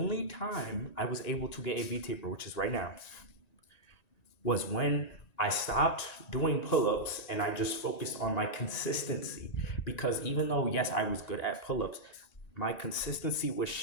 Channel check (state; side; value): late; right; 1.9 ms